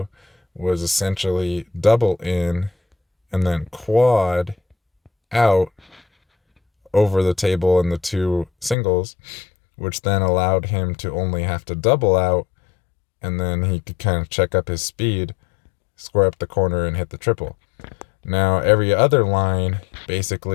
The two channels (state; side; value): drops out; right; at 8.8 s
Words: was essentially double in and then quad out over the table in the two singles, which then allowed him to only have to double out, and then he could kind of check up his speed, square up the corner, and hit the triple. Now, every other line